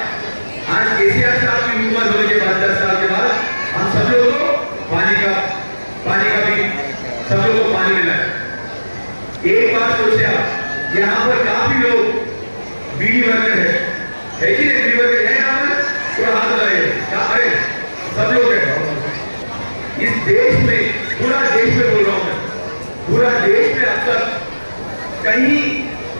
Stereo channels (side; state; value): both; inverted; correlation -1.00